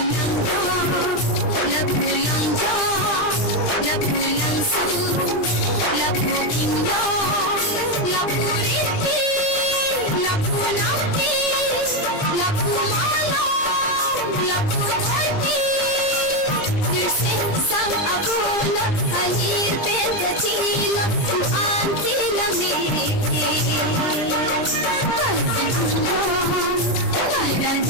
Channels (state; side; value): late; right; 20 ms